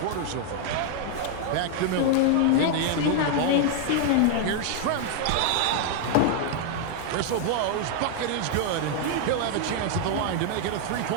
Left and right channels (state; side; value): different; both; correlation 0.00